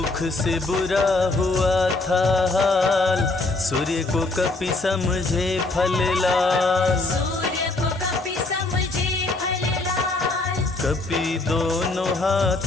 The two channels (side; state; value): right; quieter; 3.2 dB